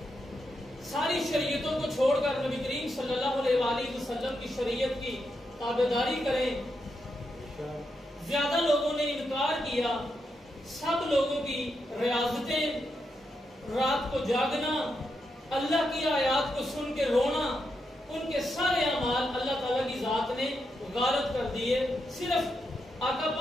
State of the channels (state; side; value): normal; both; correlation 0.84